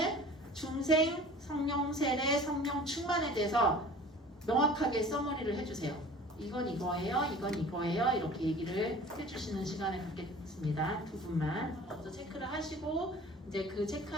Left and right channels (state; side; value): normal; both; correlation 0.44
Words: 중생, 성령 세례, 성령 충만에 대해서 명확하게 서머리를 해주세요. 이건 이거예요, 이건 이거예요. 이렇게 얘기를 해주시는 시간을 갖겠습니다. 두 분만 먼저 체크를 하시고 이제 그